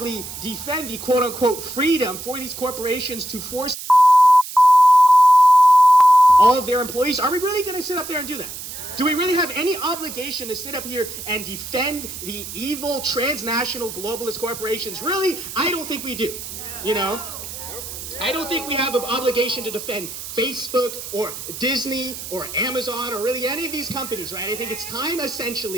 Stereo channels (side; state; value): right; noise; hiss, 10 dB below the sound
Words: defend the quote unquote freedom for these corporations to force all of their employees? Are we really going to sit up there and do that? Do we really have any obligation to sit up here and defend the evil transnational globalist corporations? Really? I don't think we do. I don't think we have an obligation to defend Facebook or Disney or Amazon or really any of these companies, right? I think it's time